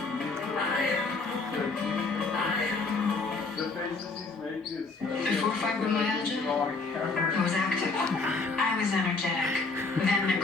Before fibromyalgia, I was active. I was energetic. Then the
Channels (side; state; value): right; quieter; 3.9 dB